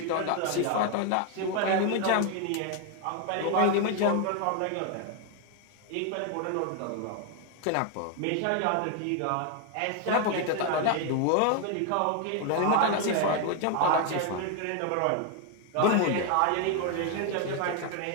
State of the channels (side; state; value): both; different; correlation 0.01